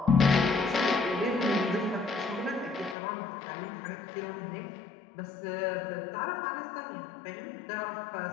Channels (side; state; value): right; drops out; at 3.0 s